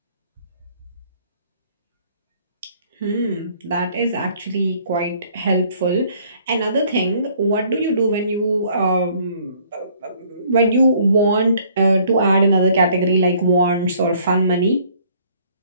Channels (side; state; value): both; inverted; correlation -0.60